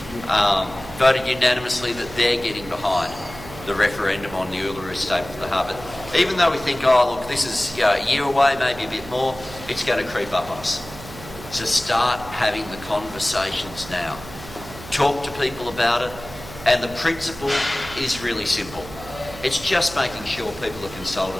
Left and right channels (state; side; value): noise; right; hum, 15 dB below the sound